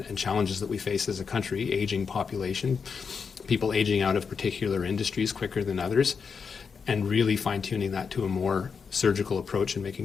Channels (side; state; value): right; quieter; 5.8 dB